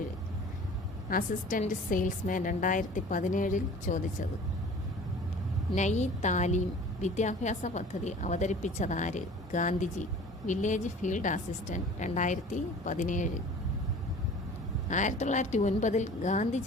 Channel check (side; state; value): both; normal; correlation 0.44